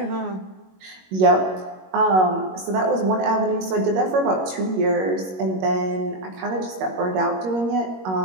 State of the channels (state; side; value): late; left; 21 ms